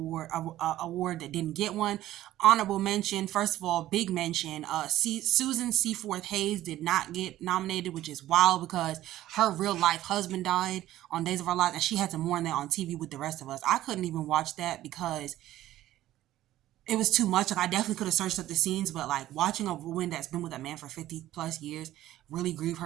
that didn't get one? Honorable mention, first of all, big mention, Susan Seaforth Hayes did not get nominated, which is wild because her real life husband died on Days of Our Lives and she had to mourn that on TV with the rest of us. I couldn't even watch that because it was too much. Like, I definitely could have searched up the scenes, but like watching a woman that's been with a man for 50 plus years really grieve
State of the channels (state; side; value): quieter; left; 14.2 dB